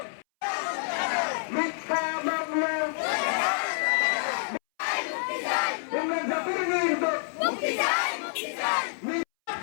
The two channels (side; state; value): right; silent; 59 dB below the other